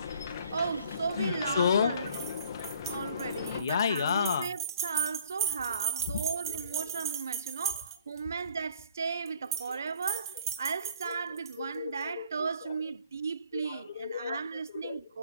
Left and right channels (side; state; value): both; inverted; correlation -0.59